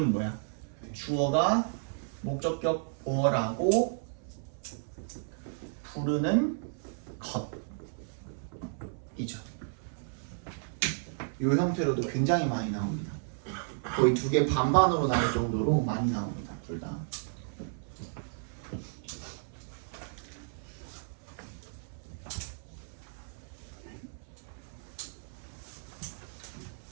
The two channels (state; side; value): silent; left; 56 dB below the other